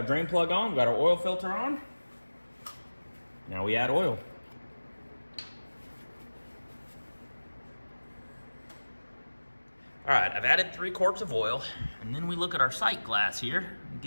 drain plug on, we got our oil filter on. Now we add oil. All right, I've added 3 quarts of oil, and then we look at our sight glass here, and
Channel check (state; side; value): inverted; both; correlation -1.00